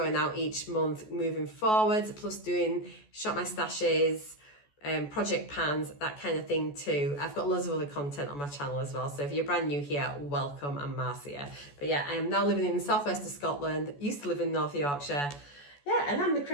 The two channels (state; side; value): late; right; 14 ms